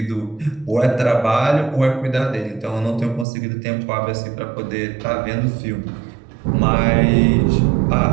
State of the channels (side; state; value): left; drops out; at 3.2 s